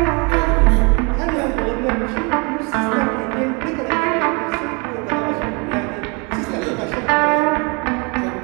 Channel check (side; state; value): left; quieter; 31.5 dB